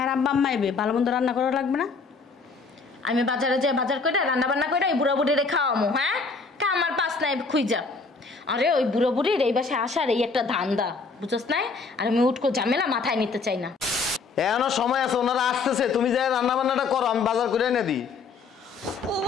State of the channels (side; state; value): right; quieter; 4.4 dB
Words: আব্বা আম্মা আইবে, ভালো মন্দ রান্না করা লাগবে না। আমি বাজারে যাই, বাজার করে রান্না বান্না করে ওই বুড়া বুড়িরে খাওয়ামো। হ্যাঁ, আমার পাস নাই খুঁজা। আরে ওই বুড়ো বুড়ির এই বাসে আসার এই একটা ধান্দা, বুঝছস না? আর আমি উঠকো ঝামেলা মাথায় নিতে চাই না। এখনো সময় আছে, ওনারা আসতেছে, তুমি যাই রান্না বান্নাটা করো, আমি বাজার করে এনে দিই।